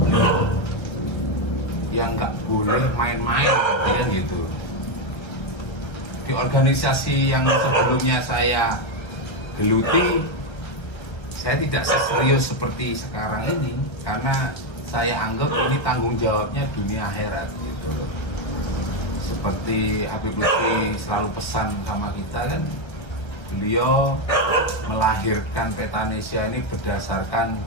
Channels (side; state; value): right; late; 1.3 ms